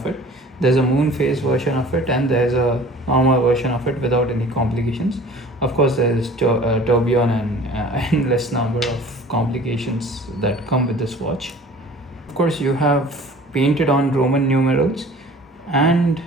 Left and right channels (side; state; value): both; normal; correlation 0.46